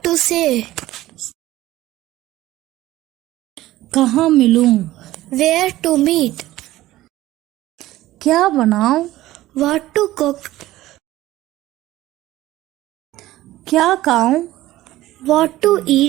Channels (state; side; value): quieter; left; 15.9 dB